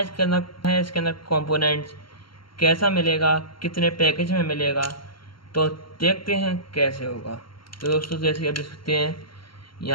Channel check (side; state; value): right; late; 0.73 ms